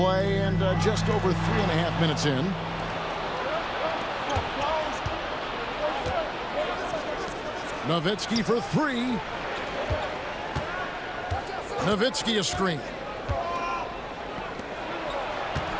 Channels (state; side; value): identical; both; correlation 1.00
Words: and just over 3.5 minutes in. Nowitzki for three. Nowitzki a screen.